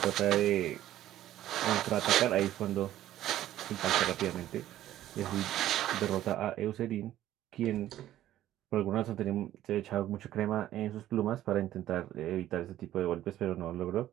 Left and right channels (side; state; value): left; quieter; 13.2 dB